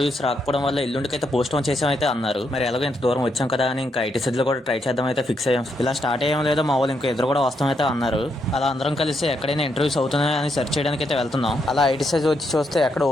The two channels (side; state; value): both; normal; correlation 0.78